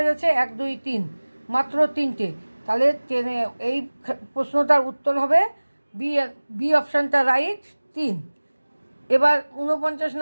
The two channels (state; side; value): inverted; both; correlation -1.00